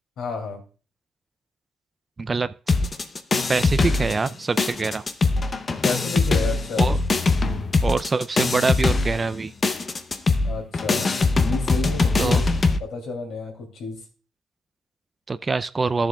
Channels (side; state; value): both; normal; correlation 0.87